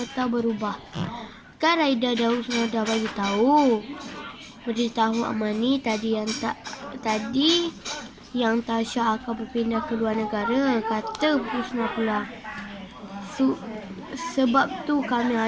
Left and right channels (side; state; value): both; identical; correlation 1.00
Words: berubah. Kan Raida dah Husna dah beritahu Amani tadi yang Tasha akan berpindah ke luar negara, kata Husna pula. Sebab tu kami